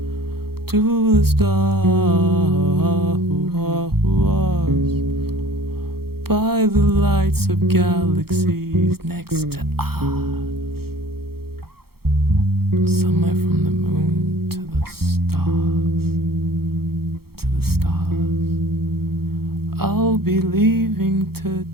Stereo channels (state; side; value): late; left; 0.95 ms